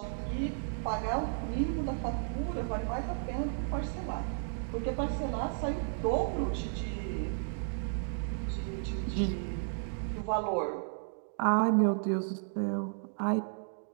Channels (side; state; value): left; silent; digital silence